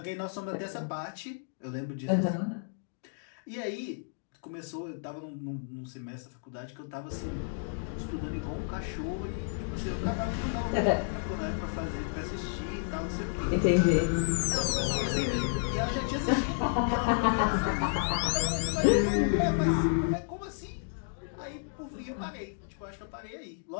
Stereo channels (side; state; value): right; silent; digital silence